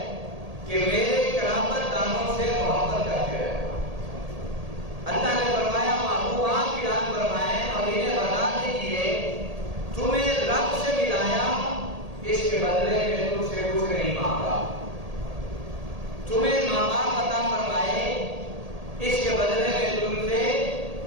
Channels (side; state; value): left; late; 1.8 ms